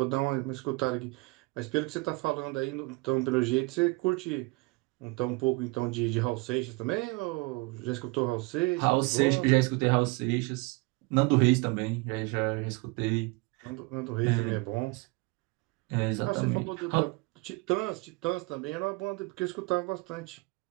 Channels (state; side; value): quieter; left; 26.3 dB